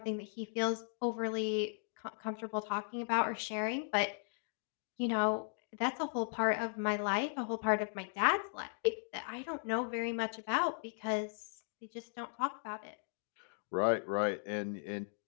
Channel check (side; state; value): right; silent; digital silence